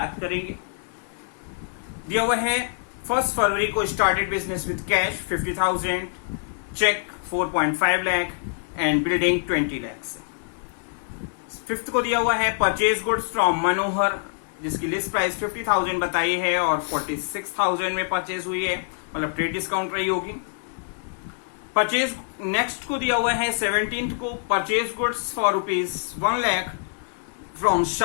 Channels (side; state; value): right; silent; digital silence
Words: करेंगे। दिया हुआ है 1 फरवरी को started business with cash 50,000, cheque 4.5 lakh and building 20 lakh. 5th को दिया हुआ है परचेज गुड्स फ्रॉम मनोहर, जिसकी लिस्ट प्राइस 50,000 बताई है और 46,000 में परचेज हुई है, मतलब ट्रेड डिस्काउंट रही होगी। परचेज नेक्स्ट को दिया हुआ है 17th को purchase goods for ₹1 lakh from